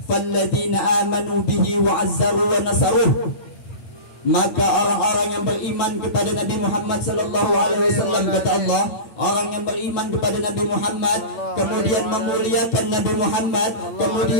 "Falladzina amanu bihi wa 'azzaru wa nasaruh." Maka orang-orang yang beriman kepada Nabi Muhammad sallallahu alaihi wasallam, kata Allah, orang yang beriman kepada Nabi Muhammad kemudian memuliakan Nabi Muhammad,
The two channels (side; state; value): right; late; 8.6 ms